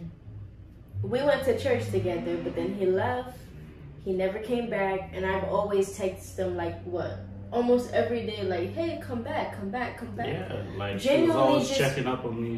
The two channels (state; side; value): identical; both; correlation 1.00